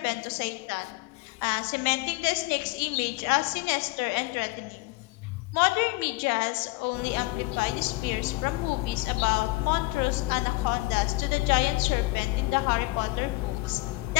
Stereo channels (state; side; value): quieter; right; 22.5 dB